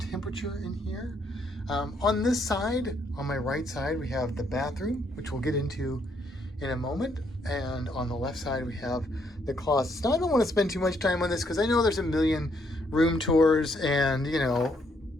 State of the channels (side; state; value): both; normal; correlation 0.72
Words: in here. On this side, on my right side, we have the bathroom, which we'll get into in a moment. And on the left side, we have the closets. Now, I don't want to spend too much time on this because I know there's a million room tours and, you know,